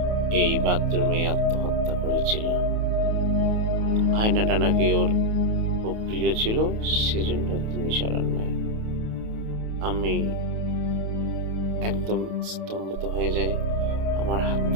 এই বাথরুমে আত্মহত্যা করেছিল। আয়নাটা নাকি ওর খুব প্রিয় ছিল, সেজন্য তিনি সরান নাই। আমি একদম স্তম্ভিত হয়ে যাই, আমার হাত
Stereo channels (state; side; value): late; left; 28 ms